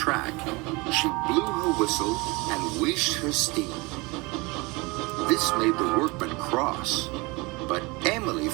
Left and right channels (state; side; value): quieter; left; 25.7 dB